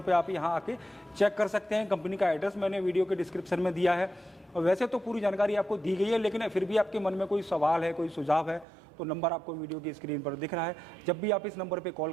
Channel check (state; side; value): drops out; left; at 8.7 s